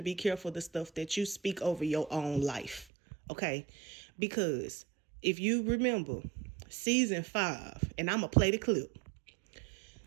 be careful the stuff that you speak over your own life. Okay? Because if you remember season 5, and I'm going to play the clip.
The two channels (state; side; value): drops out; left; at 2.9 s